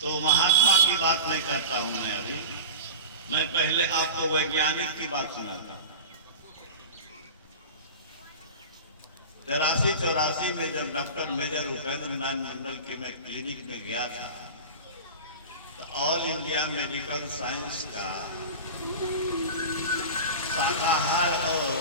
तो महात्मा की बात नहीं करता हूं मैं अभी, मैं पहले आपको वैज्ञानिक की बात सुनाता हूं। 83-84 में जब डॉक्टर मेजर उपेंद्र नारायण मंडल के मैं क्लिनिक में गया था, तो ऑल इंडिया मेडिकल साइंस का शाकाहार और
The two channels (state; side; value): inverted; both; correlation -0.30